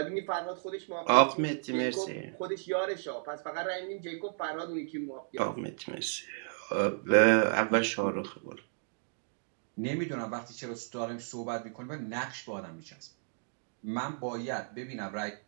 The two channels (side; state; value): left; silent; digital silence